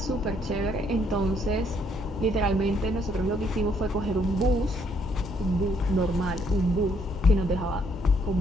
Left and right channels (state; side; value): normal; both; correlation 0.69